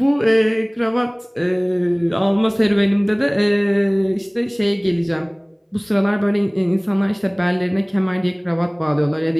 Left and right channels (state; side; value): identical; both; correlation 1.00